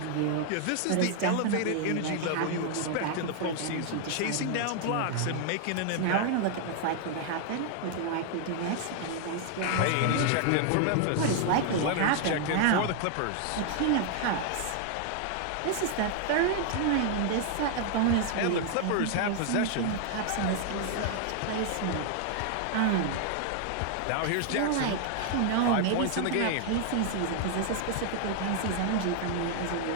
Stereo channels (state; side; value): different; both; correlation 0.00